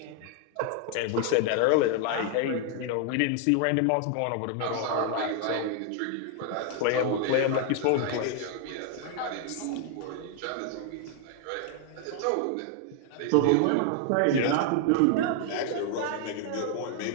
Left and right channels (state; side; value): different; both; correlation 0.00